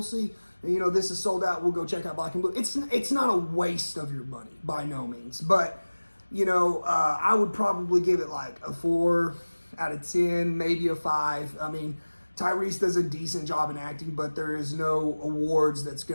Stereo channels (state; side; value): inverted; both; correlation -1.00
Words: see. You know, this is sold out. We'll go check out Black and Blue. It's not a waste of your money by no means. But, you know, I would probably give it like a 4 out of 10, maybe a 5. I mean, Tyrese does a decent job in acting, but there is no awards that's